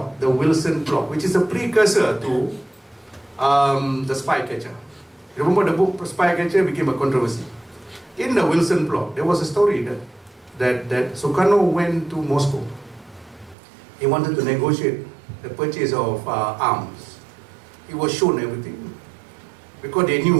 The Wilson Plot, which is a precursor to The Spy Catcher. Remember the book Spy Catcher became a controversy. In the Wilson Plot, there was a story that Sukarno went to Moscow. He wanted to negotiate the purchase of arms. He was shown everything. Because they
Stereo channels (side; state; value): left; drops out; at 13.6 s